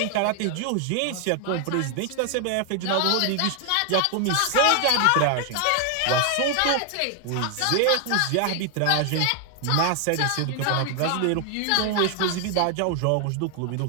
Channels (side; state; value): both; different; correlation 0.00